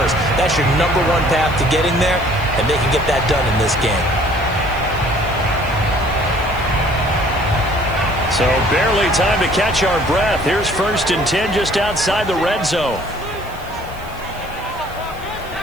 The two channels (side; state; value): right; noise; hiss, 23 dB below the sound